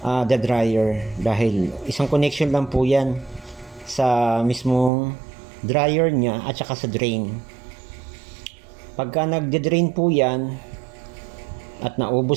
the dryer, dahil isang connection lang po yan sa mismong dryer niya at saka sa drain. Pagka nagde-drain po yan at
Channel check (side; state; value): left; drops out; at 4.9 s